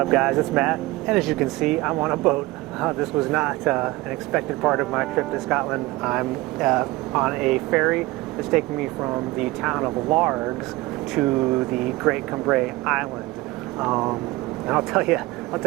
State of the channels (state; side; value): quieter; left; 20.1 dB